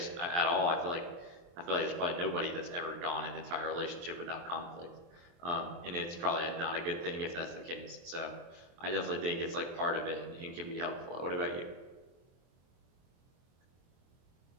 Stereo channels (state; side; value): late; left; 23 ms